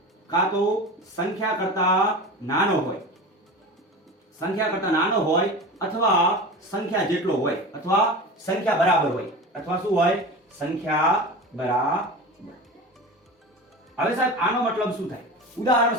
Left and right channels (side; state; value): both; normal; correlation 0.30